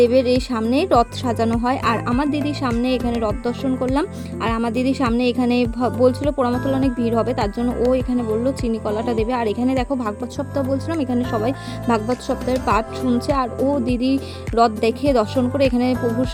এই সামনে রথ সাজানো হয়। আর আমার দিদির সামনে এখানে রথ দর্শন করলাম। আর আমার দিদির সামনে এখানে বলছিল পোড়ামাতলে অনেক ভিড় হবে, তার জন্য ও এখানে বললো চিনি কলাটা দেবে। আর এখানে দেখো ভাগবত সপ্তাহ বলছিলাম, এখানে সবাই ভাগবত সপ্তাহের পাঠ শুনছে। আর ও দিদি রথ দেখে দর্শন করে এখানে প্রভুর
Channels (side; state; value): both; identical; correlation 1.00